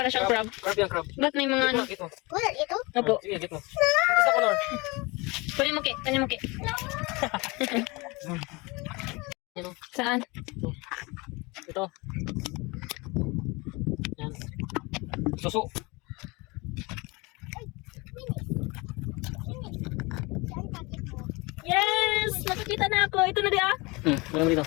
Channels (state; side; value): quieter; right; 25.5 dB